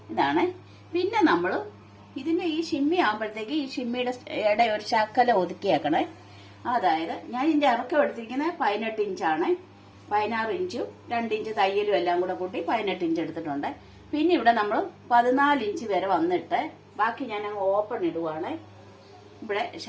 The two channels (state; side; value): identical; both; correlation 1.00